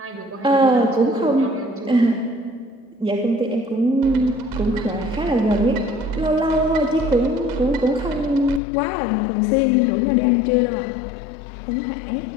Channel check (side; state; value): right; drops out; at 8.6 s